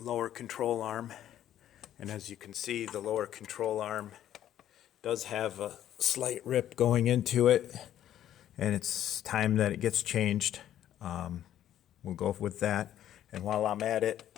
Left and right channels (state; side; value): quieter; right; 11.5 dB